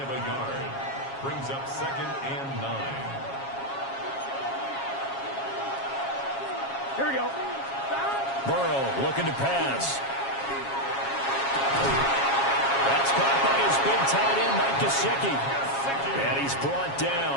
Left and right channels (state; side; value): late; right; 7.3 ms